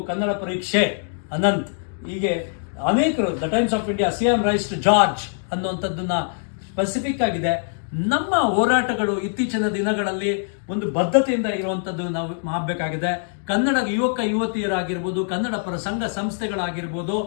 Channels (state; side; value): silent; right; digital silence